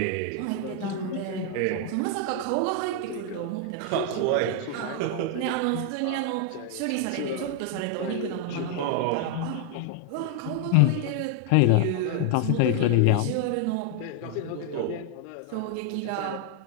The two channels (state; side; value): different; both; correlation 0.00